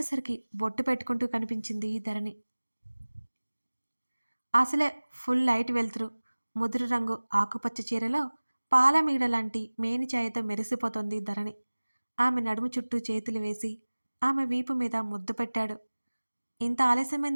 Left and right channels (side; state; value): both; inverted; correlation -1.00